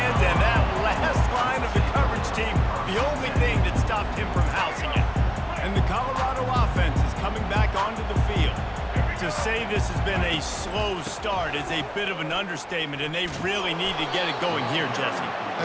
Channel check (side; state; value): both; identical; correlation 1.00